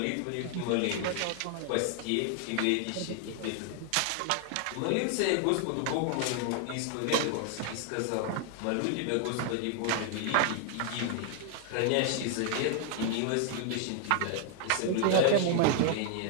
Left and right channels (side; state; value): both; different; correlation 0.00